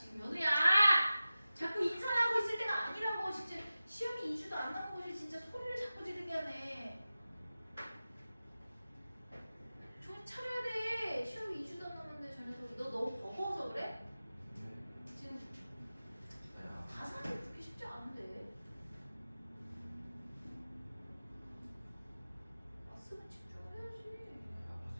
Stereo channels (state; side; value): inverted; both; correlation -0.95